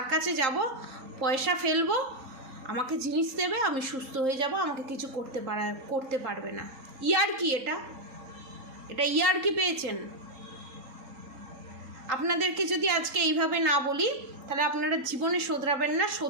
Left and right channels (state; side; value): late; left; 3.8 ms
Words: কাছে যাব, পয়সা ফেলবো, আমাকে জিনিস দেবে, আমি সুস্থ হয়ে যাব, আমাকে কিছু করতে পারবে না। ইয়ার কি এটা ইয়ার কি পেয়েছেন? আপনাদেরকে যদি আজকে এইভাবে না বলি তাহলে আপনারা জীবনে শোধরাবেন না।